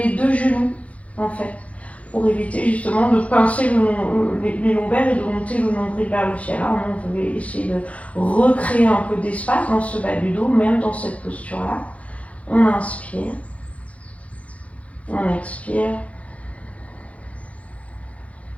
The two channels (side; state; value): right; late; 0.065 ms